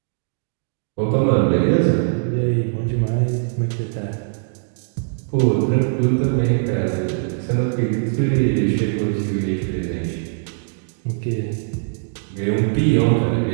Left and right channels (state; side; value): silent; left; digital silence